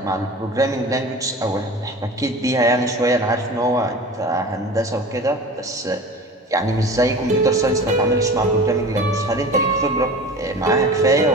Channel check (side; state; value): both; normal; correlation 0.37